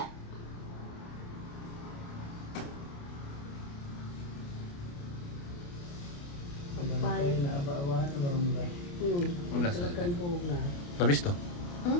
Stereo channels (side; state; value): right; late; 29 ms